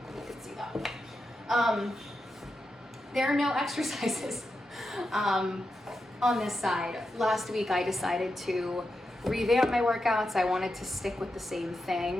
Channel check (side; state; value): both; normal; correlation 0.88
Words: You can see that. There are no exercises on this side. Last week I decided to revamp my workouts. I wanted to stick with the same